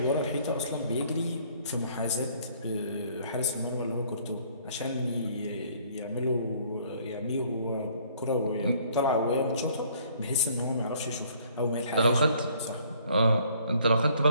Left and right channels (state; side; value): inverted; both; correlation -0.60